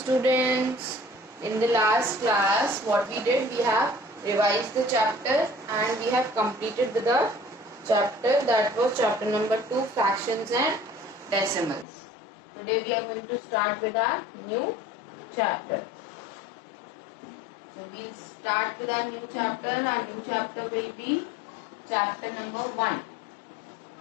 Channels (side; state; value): right; drops out; at 11.9 s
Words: In the last class, what we did, we have revised the chapter and we have completed with the chapter that was chapter number 2, fractions and decimals. Today we are going to start with our new chapter. So we'll start with our new chapter. Our new chapter will be chapter number 1.